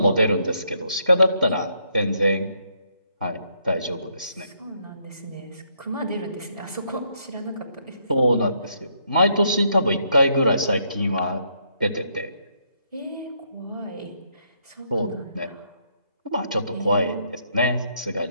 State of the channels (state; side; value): inverted; both; correlation -0.73